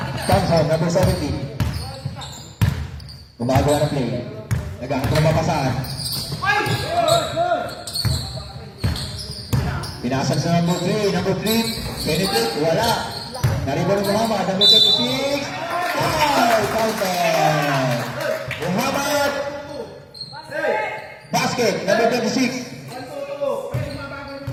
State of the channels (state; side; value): identical; both; correlation 1.00